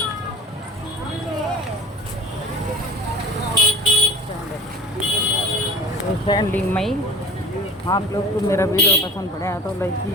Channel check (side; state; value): both; normal; correlation 0.40